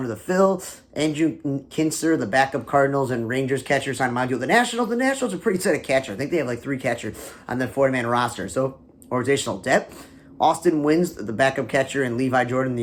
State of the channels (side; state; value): both; identical; correlation 1.00